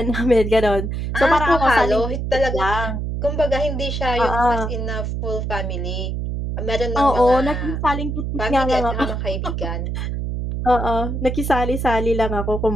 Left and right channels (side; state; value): right; noise; hum, 3 dB below the sound